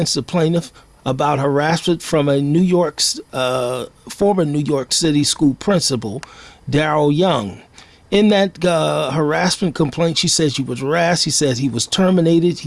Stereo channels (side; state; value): both; identical; correlation 1.00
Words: the plaintiff about harassment from a former New York City school principal, Daryl Young. In that harassment complaint, she said she was harassed. He said he was terminated.